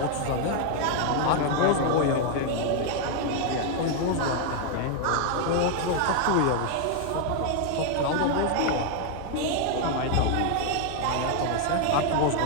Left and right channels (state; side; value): different; both; correlation 0.00